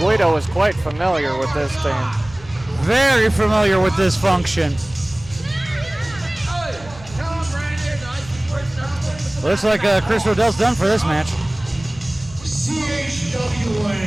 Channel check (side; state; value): right; noise; rumble, 20 dB below the sound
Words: Guido is quite familiar with this team. Very familiar with this function. Looks like Chris Rodell's done for this match.